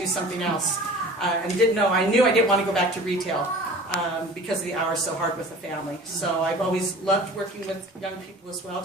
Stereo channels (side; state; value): both; normal; correlation 0.43